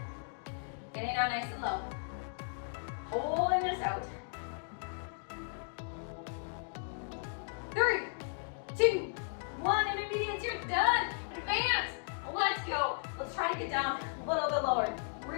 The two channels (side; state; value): right; silent; 54 dB below the other